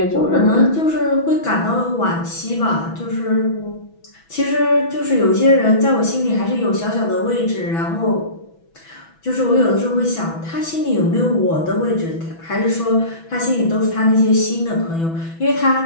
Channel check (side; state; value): right; late; 6.1 ms